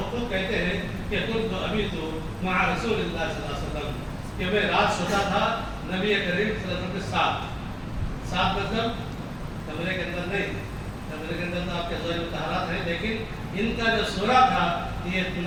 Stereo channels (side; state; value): both; identical; correlation 1.00